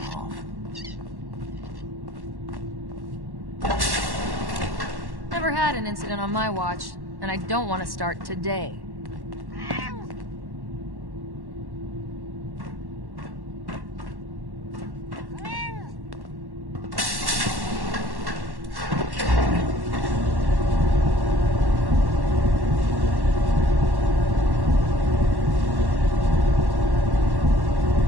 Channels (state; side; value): late; left; 1.1 ms